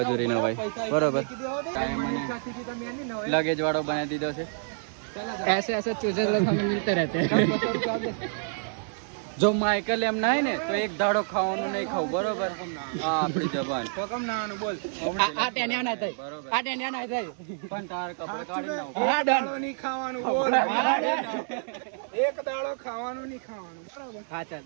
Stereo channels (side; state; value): left; silent; digital silence